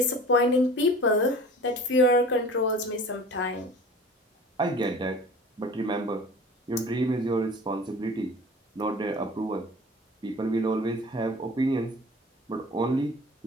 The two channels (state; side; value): normal; both; correlation 0.42